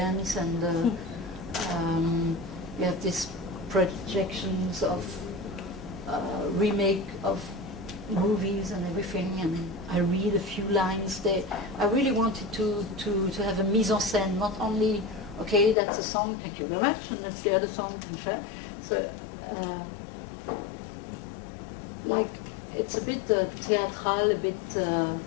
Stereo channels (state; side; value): drops out; right; at 15.8 s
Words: and you have these projections of remake of movies and everything, and I read a few lines there. I really wanted to have a mise en scène, not only, okay, that's a song, thank you very much, and that's the other song, so like, it's a bit theatral, a bit,